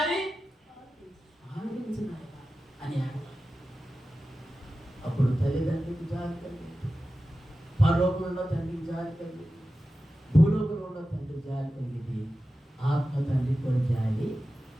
ఆలకించు అని అడగాలి. అప్పుడు తల్లిదండ్రులకు జాలి కలిగింది, పరలోకంలో తండ్రికి జాలి కలిగింది, భూలోకంలో తండ్రి జాలి కలిగింది, ఆత్మ తండ్రి కూడా జాలి.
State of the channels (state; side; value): normal; both; correlation 0.94